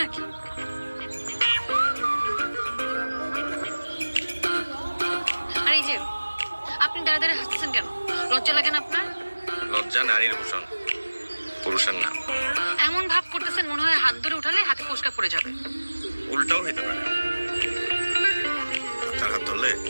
আর এই যে আপনি দাঁড়া দাঁড়িয়ে হাসতেছেন কেন? লজ্জা লাগে না আপনার? লজ্জা নারীর ভূষণ, পুরুষের না। এমন ভাব করতেছেন মনে হয় হাত ধরে উঠালে হাতে ফোসকা পড়ে যাবে। উল্টাও হইতে পারে। তার হাত ধরলে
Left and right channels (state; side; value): inverted; both; correlation -1.00